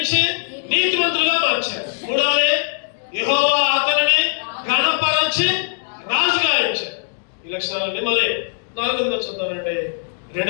నీతిమంతులుగా మార్చాడు. మూడవది యెహోవా అతనిని ఘనపరచి రాజుగా ఇచ్చాడు. ఈ లక్షణాలన్నీ మళ్ళీ 4వ చూద్దామండి.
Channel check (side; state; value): right; silent; digital silence